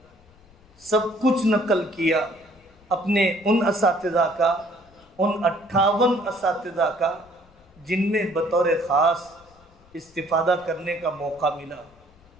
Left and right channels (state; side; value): noise; left; rumble, 28 dB below the sound